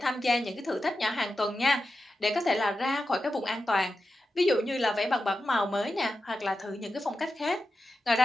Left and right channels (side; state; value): both; normal; correlation 0.91